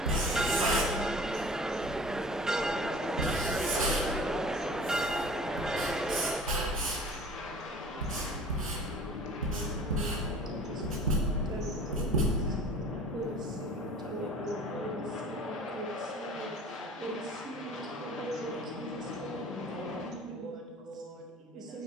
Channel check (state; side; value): normal; both; correlation 0.44